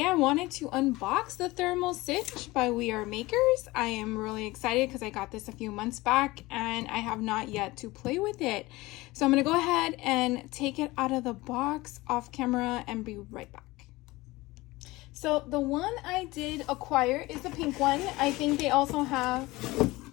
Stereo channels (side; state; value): right; quieter; 20.5 dB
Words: I wanted to unbox the Thermal Cinch by We Are Makers. I am really excited because I got this a few months back and I have not yet to play with it. So I'm going to go ahead and take it out of the box off camera and be right back. So the one I did acquire is the pink one. I think they also have